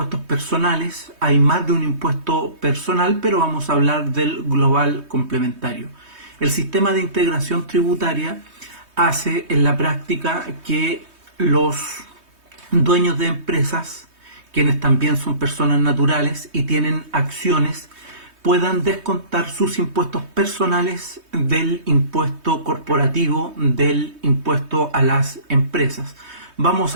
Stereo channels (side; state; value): left; late; 3.2 ms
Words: personales. Hay más de un impuesto personal, pero vamos a hablar del global complementario. El sistema de integración tributaria hace en la práctica que los dueños de empresas, quienes también son personas naturales y tienen acciones, puedan descontar sus impuestos personales del impuesto corporativo, del impuesto a las empresas. Vamos